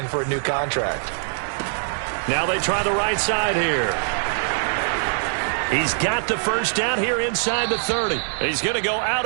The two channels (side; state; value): left; silent; digital silence